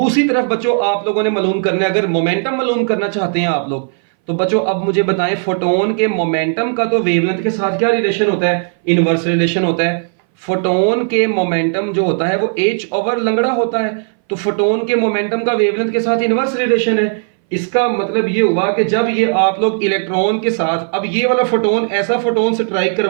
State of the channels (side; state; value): left; silent; 62 dB below the other